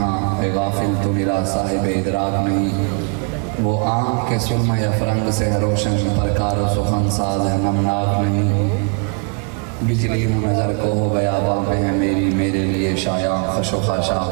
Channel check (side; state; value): left; quieter; 37.0 dB